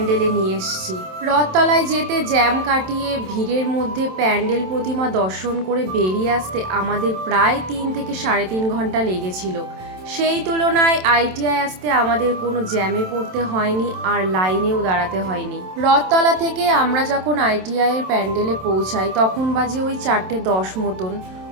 নিয়ে এসছি। রথতলায় যেতে জ্যাম কাটিয়ে ভিড়ের মধ্যে প্যান্ডেল প্রতিমা দর্শন করে বেরিয়ে আসতে আমাদের প্রায় 3 থেকে 3.5 ঘন্টা লেগেছিল। সেই তুলনায় আইটিআই আসতে আমাদের কোনো জ্যামে পড়তে হয়নি, আর লাইনেও দাঁড়াতে হয়নি। রথতলা থেকে আমরা যখন আইটিআইয়ের প্যান্ডেলে পৌঁছাই তখন বাজে ওই 4:10 মতন।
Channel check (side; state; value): left; late; 27 ms